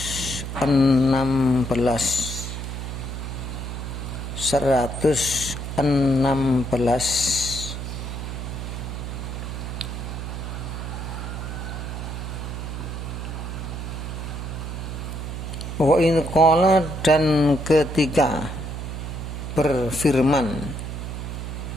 Wa in qala, dan ketika berfirman.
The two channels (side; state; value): right; noise; hum, 6 dB below the sound